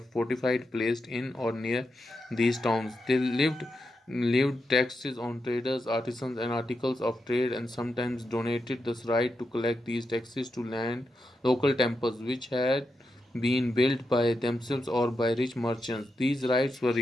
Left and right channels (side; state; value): both; normal; correlation 0.86